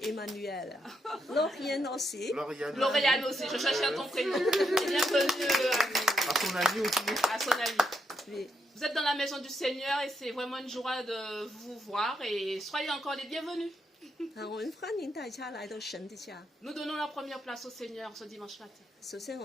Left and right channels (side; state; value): both; normal; correlation 0.79